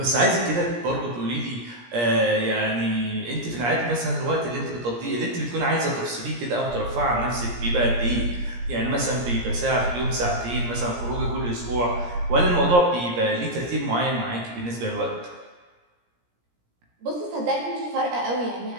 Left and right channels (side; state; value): left; late; 17 ms